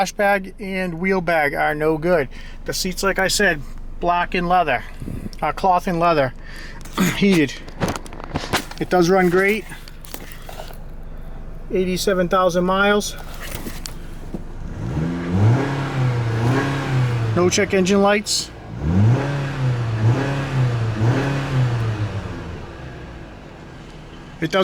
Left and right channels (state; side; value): identical; both; correlation 1.00